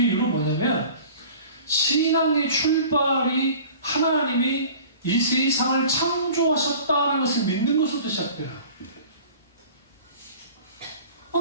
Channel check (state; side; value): inverted; both; correlation -0.44